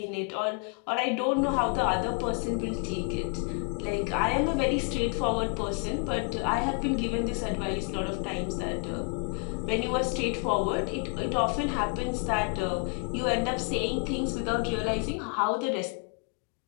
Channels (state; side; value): quieter; right; 34.6 dB